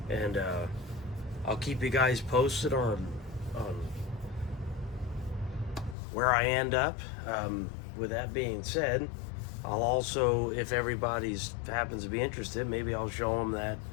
and I'll keep you guys posted on where I end up. With that being said, I'll also, if everybody's happens to be interested, maybe I'll show them that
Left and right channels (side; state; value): right; drops out; at 6.0 s